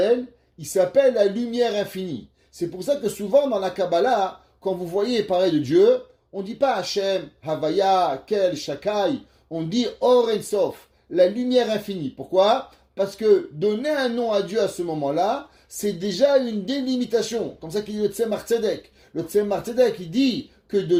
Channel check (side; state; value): both; identical; correlation 1.00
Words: Il s'appelle la lumière infinie. C'est pour ça que souvent dans la Kabbalah, quand vous voyez parler de Dieu, on ne dit pas Hachem, Havaya, Kel, Shakai, on dit Or En Sof, la lumière infinie. Pourquoi? Parce que donner un nom à Dieu à ce moment-là, c'est déjà une délimitation. Comme ça qu'il dit le Tzemar Tzedek. Le Tzemar Tzedek, il dit que de